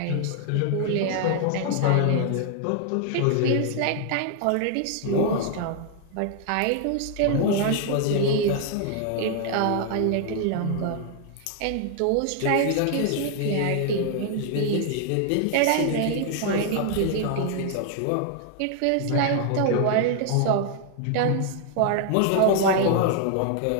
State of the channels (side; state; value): both; different; correlation 0.00